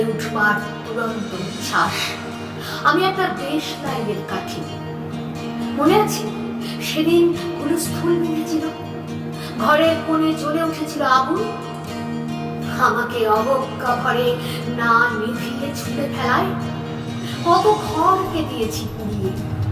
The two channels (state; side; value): identical; both; correlation 1.00